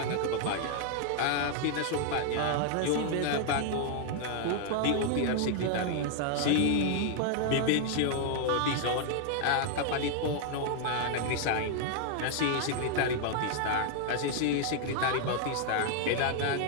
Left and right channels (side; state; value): both; different; correlation 0.00